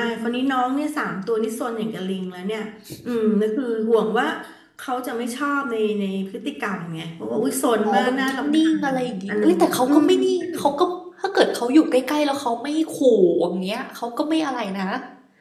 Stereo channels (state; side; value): identical; both; correlation 1.00